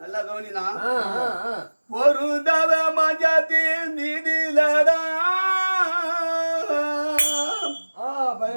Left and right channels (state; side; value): inverted; both; correlation -1.00